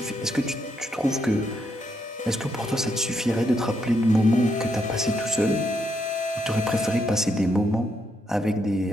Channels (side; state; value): both; normal; correlation 0.77